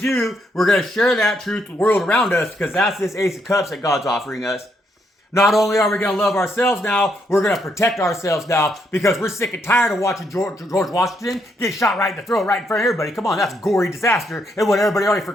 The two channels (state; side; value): normal; both; correlation 0.76